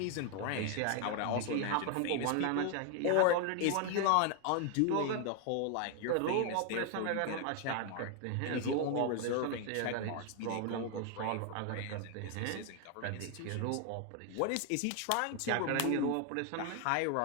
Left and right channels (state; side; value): different; both; correlation 0.01